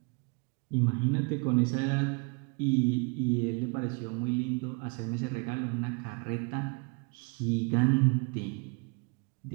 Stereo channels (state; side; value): quieter; left; 32.1 dB